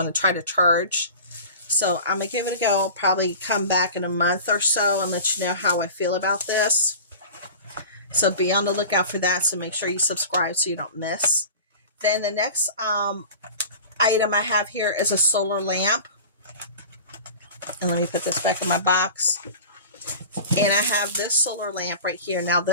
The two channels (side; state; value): both; inverted; correlation -0.37